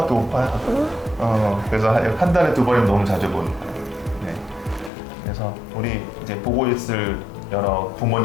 못 봐요. 그래서 한 달에 2번이면 너무 자주 보는 거예요. 네. 그래서 우리 이제 보고 있을 여러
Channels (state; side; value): drops out; right; at 4.9 s